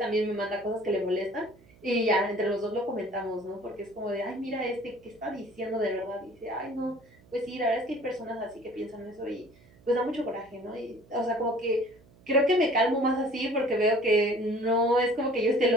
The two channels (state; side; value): noise; right; hum, 27 dB below the sound